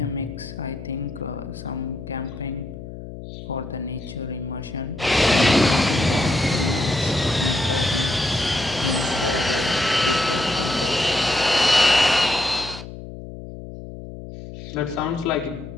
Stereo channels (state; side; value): noise; left; hum, 12 dB below the sound